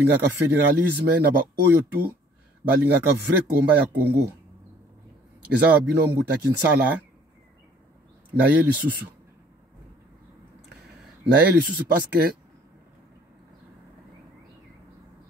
fédéralisme na ba oyo tu balingaka vrai combat ya Congo. Eza ba bino mbuta Kinsala na ye lisusu. Parce que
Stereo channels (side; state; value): both; normal; correlation 0.57